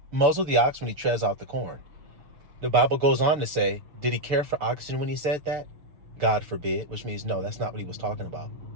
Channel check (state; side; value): late; left; 6.6 ms